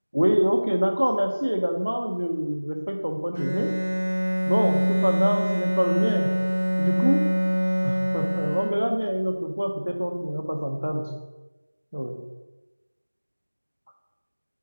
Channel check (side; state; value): both; inverted; correlation -1.00